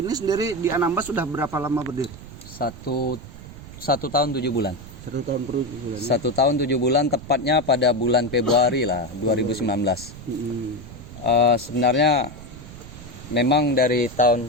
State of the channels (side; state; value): right; noise; rumble, 15 dB below the sound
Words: ini sendiri di Anambas sudah berapa lama berdiri? Satu tahun 7 bulan. 1 tahun per bulan. 1 tahun 7 bulan, tepatnya pada bulan Februari lah 2019. Sebenarnya memang dari